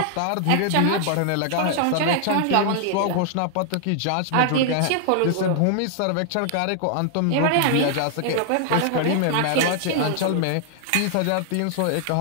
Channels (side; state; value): both; different; correlation 0.00